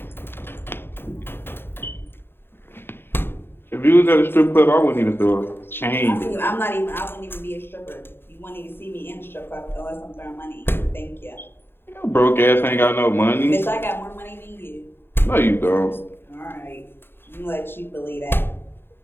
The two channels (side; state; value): right; late; 0.11 ms